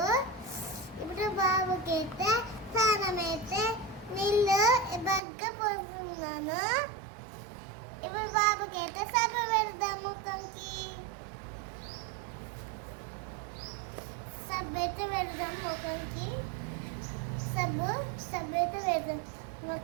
ఇప్పుడు బాబుకి అయితే స్నానం అయితే నీళ్ళు బాగా పోస్తున్నాను. ఇప్పుడు బాబుకి అయితే సబ్బు పెడదాం. ముఖంకి సబ్బు అయితే పెడదాం. ముఖంకి సబ్బు అయితే పెడదాం.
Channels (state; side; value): drops out; left; at 5.2 s